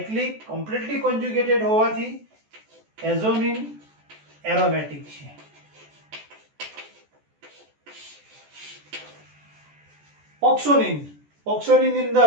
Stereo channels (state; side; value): late; left; 14 ms